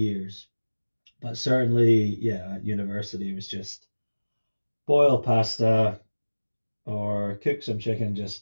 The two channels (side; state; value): both; inverted; correlation -1.00